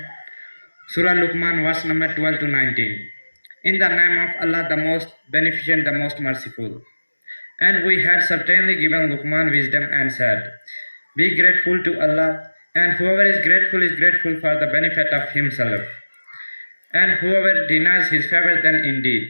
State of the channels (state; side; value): inverted; both; correlation -1.00